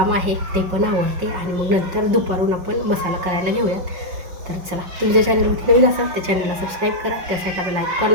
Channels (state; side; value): late; left; 5.5 ms